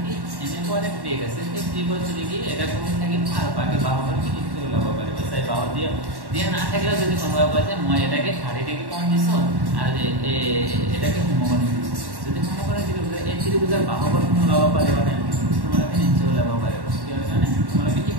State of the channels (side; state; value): left; late; 1.1 ms